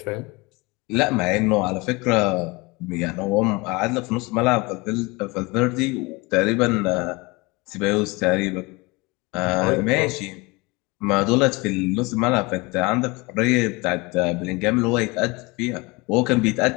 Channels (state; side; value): quieter; right; 25.2 dB